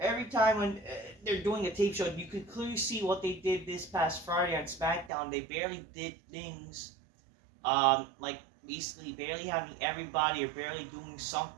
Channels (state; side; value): drops out; left; at 5.1 s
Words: time when they're doing a tape show, you can clearly see what they did this past Friday on SmackDown. They barely did things, like basically barely having everybody or barely doing